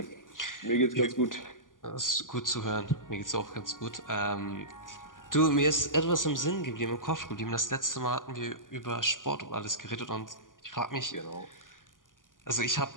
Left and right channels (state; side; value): late; right; 0.89 ms